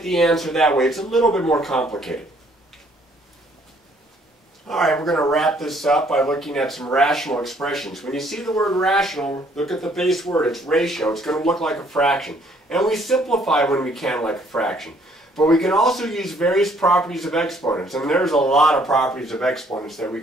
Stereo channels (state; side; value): normal; both; correlation 0.63